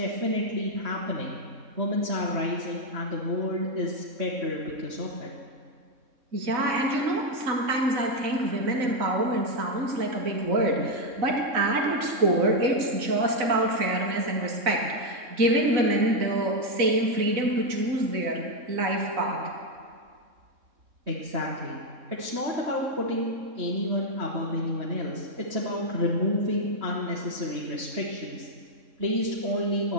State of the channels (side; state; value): left; late; 3.6 ms